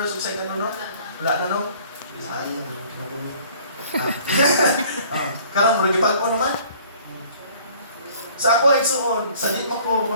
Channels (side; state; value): both; inverted; correlation -0.54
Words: o second, no? Wala na, no? Sayang, kinabulo. Karon, maragipag ko naman. Sa ako ay suon, sa di mo ko